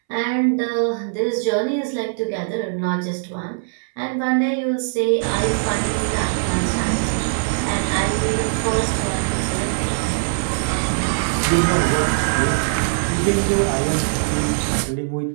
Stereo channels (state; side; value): silent; left; 65 dB below the other